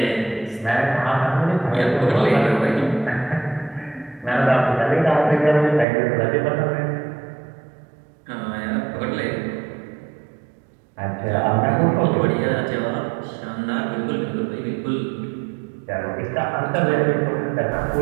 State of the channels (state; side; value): drops out; left; at 5.9 s